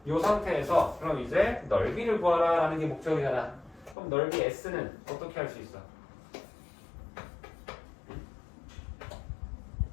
이 상태에서 그럼 이제 넓이를 구하라 라는 게 목적이잖아. 그럼 넓이 S는 어떻게 할 수 있어?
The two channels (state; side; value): drops out; right; at 4.0 s